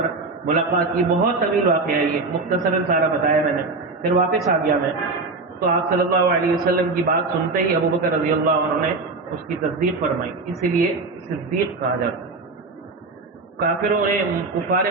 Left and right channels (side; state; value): left; quieter; 3.7 dB